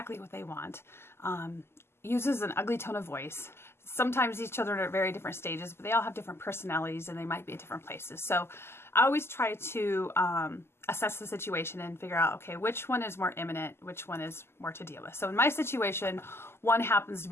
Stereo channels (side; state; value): right; late; 0.12 ms